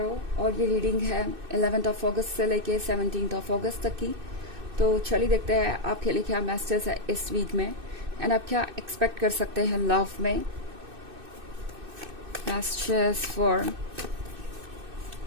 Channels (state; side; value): late; left; 2.6 ms